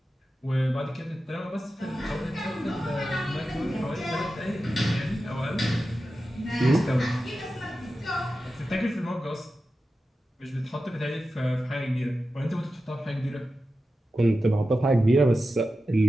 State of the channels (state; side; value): normal; both; correlation 0.92